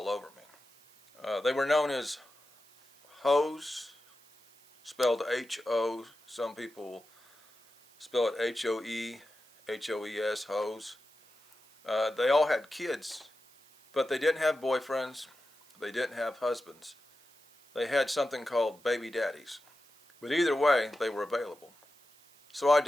over me. They were known as hoes, spelled H-O. Some people spell it H-O-E, H-O-E-S, hoes. They all had kids, but they didn't have boyfriends. They didn't have husbands. They had something called baby daddies. But either way, they were available. So I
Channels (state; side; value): noise; right; hiss, 28 dB below the sound